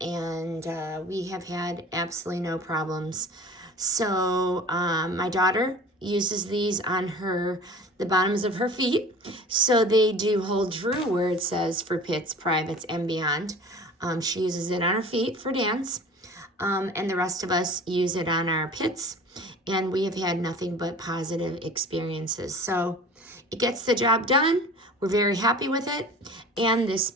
we have had absolutely no problems. So my daughter uses these on the bottoms of her feet, so they do hold true where it says for pits, privates, and beyond. She uses it on her feet for dance, and the rest of us use it on our pits, and we have had nothing but positive experiences. So it gets the job done. We're very happy with it, and this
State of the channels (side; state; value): both; normal; correlation 0.41